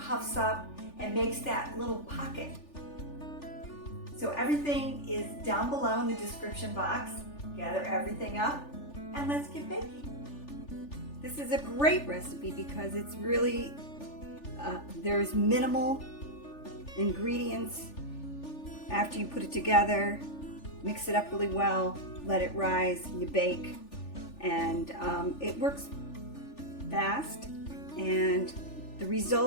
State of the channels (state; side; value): late; right; 3.4 ms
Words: up and makes that little pocket. So everything is down below in the description box. Gather everything up, and let's get baking. This is a great recipe because it's really, there's minimal ingredients. After you put it together, mix it up really well, let it rise, you bake, and it works fast, and the